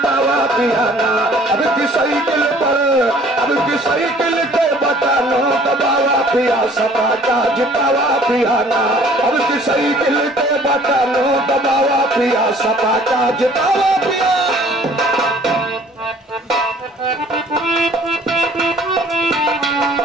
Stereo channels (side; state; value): both; normal; correlation 0.54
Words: पिया ना, अब की साइकिल के बटन हो दबावा पिया, सपा का जितावा पिया ना, अब की साइकिल के बटन हो दबावा पिया, सपा का जितावा पिया।